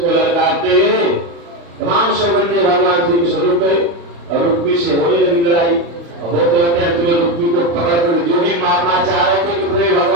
लड़काते हुए तमाम सौगंधे भगवान श्री कृष्ण रुक गए और रुक्मी से होने लगी लड़ाई। होते होते अंत में रुक्मी को पकड़ कर जो ही मारना चाह रहे थे कि पूरे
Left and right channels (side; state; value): left; late; 35 ms